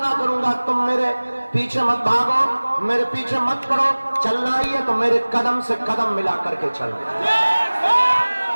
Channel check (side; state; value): both; inverted; correlation -1.00